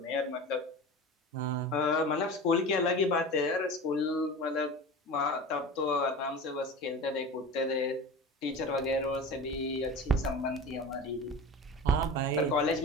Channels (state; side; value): normal; both; correlation 0.32